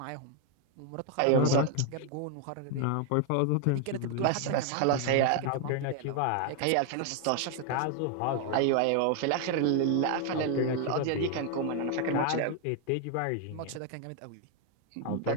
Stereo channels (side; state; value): both; different; correlation 0.00